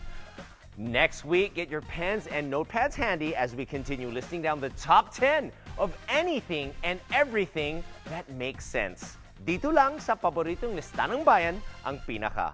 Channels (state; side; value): identical; both; correlation 1.00